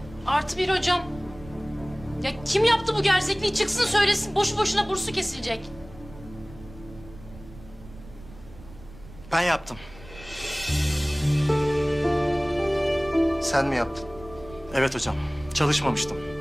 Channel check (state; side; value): noise; right; rumble, 19 dB below the sound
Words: +1 hocam. Ya kim yaptı bu gerzekliği? Çıksın söylesin. Boşu boşuna bursu kesilecek. Ben yaptım. Sen mi yaptın? Evet hocam, çalışmamıştım.